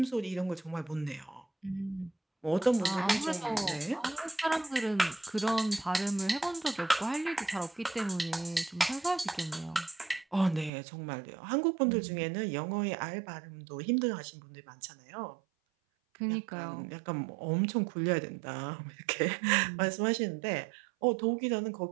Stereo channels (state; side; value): drops out; left; at 10.7 s